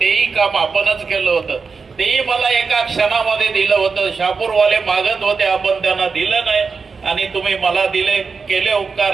काम आपणच केलं होतं. तेही मला एका क्षणामध्ये दिलं होतं. शापूरवाले मागत होते, आपण त्यांना दिलं नाही आणि तुम्ही मला दिले. केले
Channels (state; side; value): quieter; left; 5.0 dB